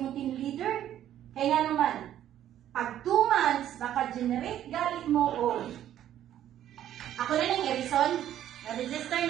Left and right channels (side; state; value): left; quieter; 11.4 dB